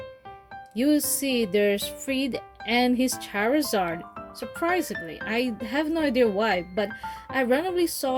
you see there's Fried and his Charizard. Surprisingly, I have no idea why, but I randomly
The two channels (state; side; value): identical; both; correlation 1.00